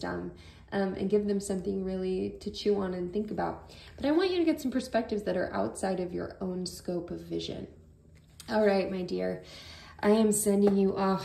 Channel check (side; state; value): both; identical; correlation 1.00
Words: and give them something really to chew on and think about. But I want you to get some perspectives that are outside of your own scope of vision. All right, my dear, I am sending you